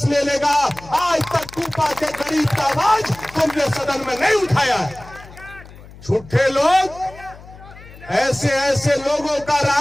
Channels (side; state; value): left; noise; hum, 19 dB below the sound